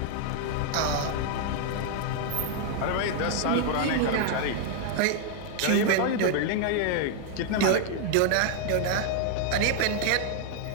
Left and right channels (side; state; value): both; different; correlation 0.00